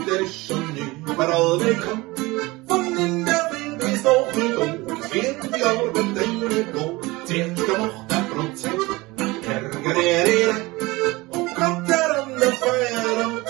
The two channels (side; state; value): left; quieter; 21.9 dB